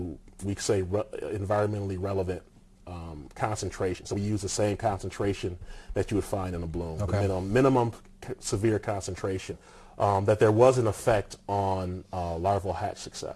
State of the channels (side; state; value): both; identical; correlation 1.00